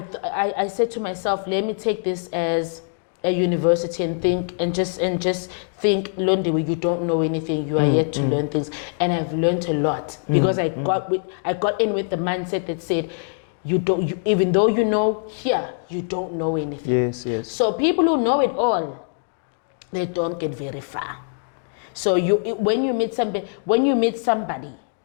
said to myself, let me take this as a university and think and just think, Londiwe, you don't know anything. You are yet to learn things, and I've learned a lot because I got in with the mindset that said, even though you know here, you don't know anything. Yes. So people who know it all, they don't get very far. So when you meet somebody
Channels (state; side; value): silent; right; digital silence